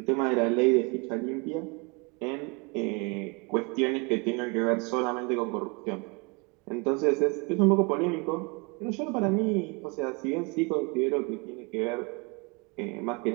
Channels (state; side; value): quieter; left; 30.6 dB